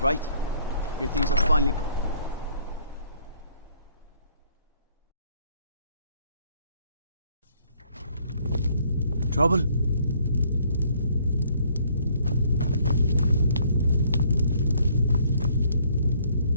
Your things are finally... Trouble?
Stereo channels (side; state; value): both; inverted; correlation -0.64